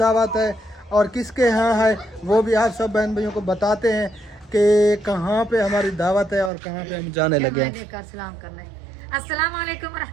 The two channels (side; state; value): left; drops out; at 6.5 s